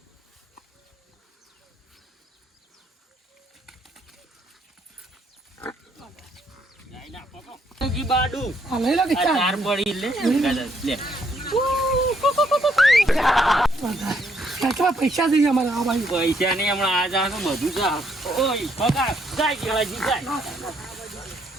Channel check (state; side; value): normal; both; correlation 0.72